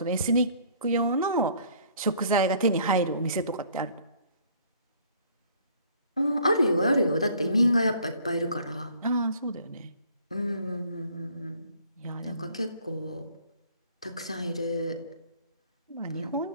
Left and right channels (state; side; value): inverted; both; correlation -0.57